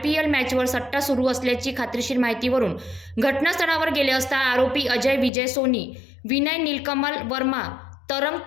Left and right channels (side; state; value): right; drops out; at 5.3 s